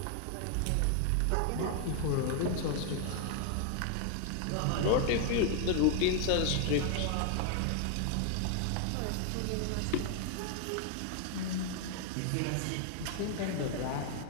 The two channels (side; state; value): both; different; correlation 0.00